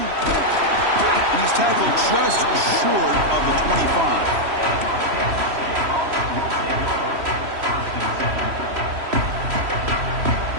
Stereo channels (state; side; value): late; left; 3.1 ms